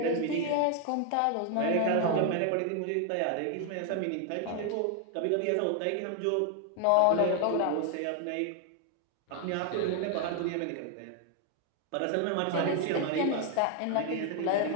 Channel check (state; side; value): different; both; correlation 0.00